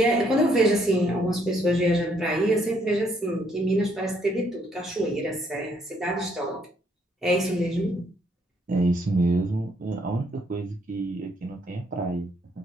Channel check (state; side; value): normal; both; correlation 0.70